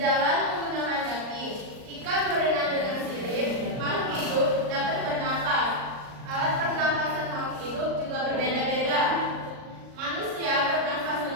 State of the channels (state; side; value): late; left; 38 ms